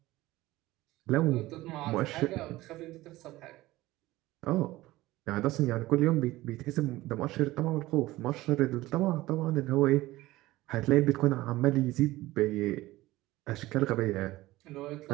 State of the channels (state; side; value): quieter; left; 17.9 dB